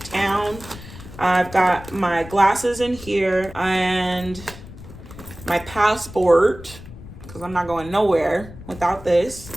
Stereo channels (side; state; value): left; noise; rumble, 16 dB below the sound